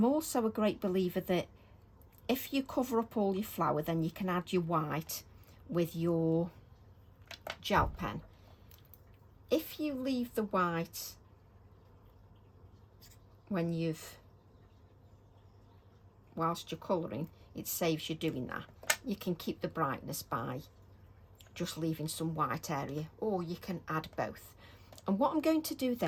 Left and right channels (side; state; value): both; identical; correlation 1.00